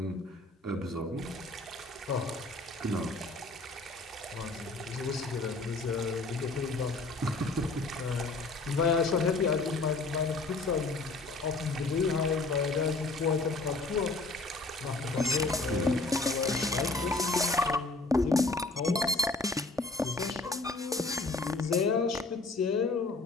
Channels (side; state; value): right; quieter; 3.3 dB